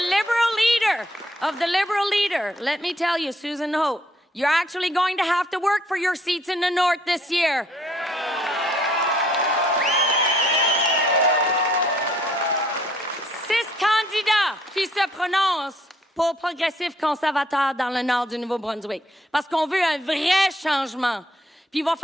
leader of the Liberal leader, let me tell you, Susan Hope, you're actually going to have to work for your seats in the north this year. Six candidats qui se prononcent pour progressif conservateur dans le nord du Nouveau-Brunswick. Parce qu'on veut un vrai changement. Puis il va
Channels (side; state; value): both; normal; correlation 0.65